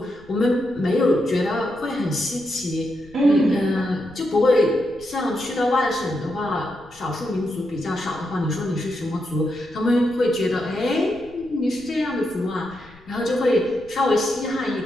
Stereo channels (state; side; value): noise; left; rumble, 25 dB below the sound